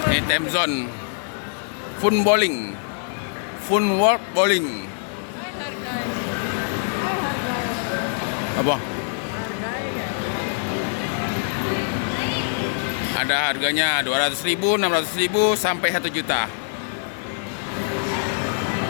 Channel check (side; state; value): right; silent; 63 dB below the other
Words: Ini time zone. Fun bowling. Fun world bowling. Apa? Ada harganya 200.000, 600.000 sampai 1 juta.